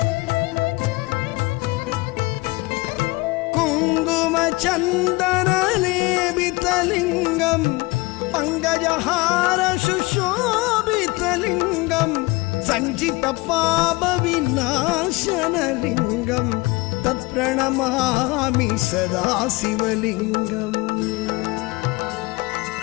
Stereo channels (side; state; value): right; quieter; 23.7 dB